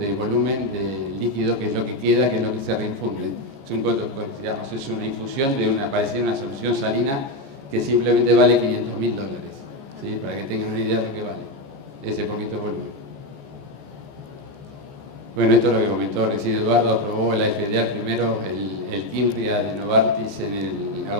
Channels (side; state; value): left; late; 14 ms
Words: volumen de líquido, que es lo que queda, que es lo que se reinfunde. Es una infusión de parecida a una solución salina que simplemente vale $500.000, ¿sí? Para que tengan una idea de lo que vale ese poquito volumen. Bueno, esto es lo que comentó recién Eduardo. Aprobó la FDA primero el Kimbria de Novartis en